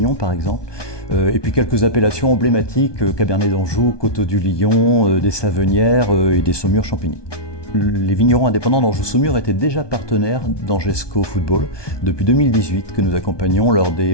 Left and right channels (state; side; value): late; right; 1.2 ms